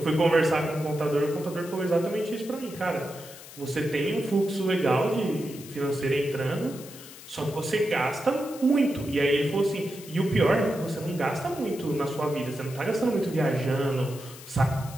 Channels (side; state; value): left; noise; hiss, 16 dB below the sound